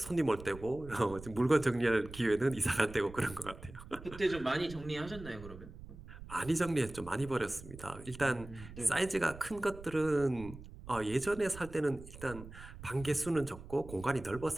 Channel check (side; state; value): right; noise; rumble, 15 dB below the sound